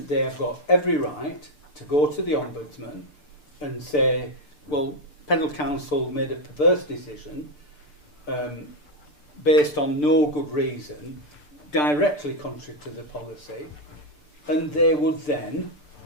they have got every right to go to the Ombudsman and say, well, Pendle Council made a perverse decision based on no good reason, directly contrary to the policy, and they would then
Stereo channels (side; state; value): right; late; 6.8 ms